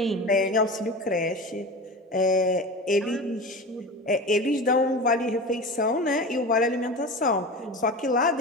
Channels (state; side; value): normal; both; correlation 0.30